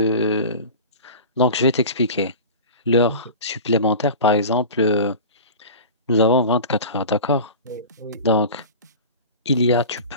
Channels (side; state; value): both; inverted; correlation -0.34